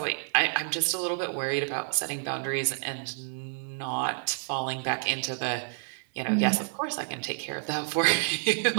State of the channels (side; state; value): left; silent; 59 dB below the other